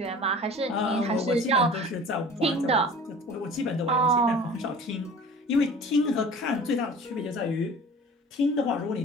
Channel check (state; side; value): normal; both; correlation 0.43